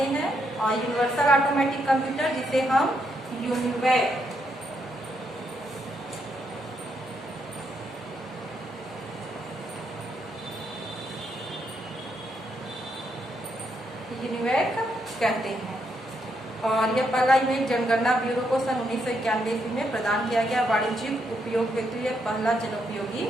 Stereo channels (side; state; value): both; normal; correlation 0.77